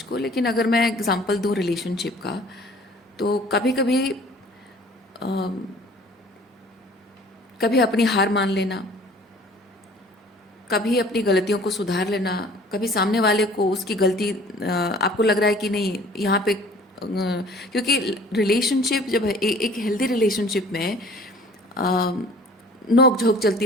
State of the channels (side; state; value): both; normal; correlation 0.50